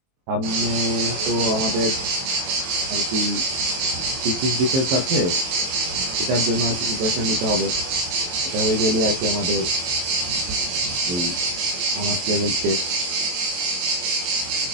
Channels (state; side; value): late; left; 23 ms